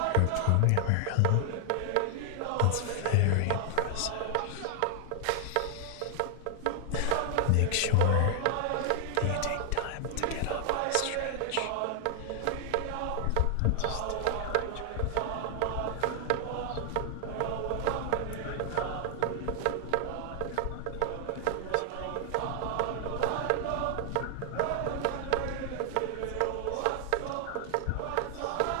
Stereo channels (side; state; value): both; different; correlation 0.00